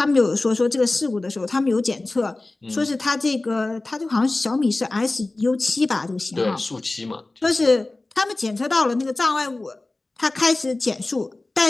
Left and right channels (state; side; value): quieter; right; 3.0 dB